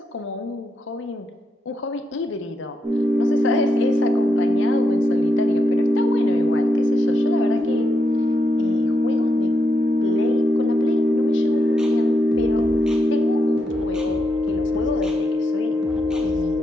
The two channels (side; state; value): both; normal; correlation 0.83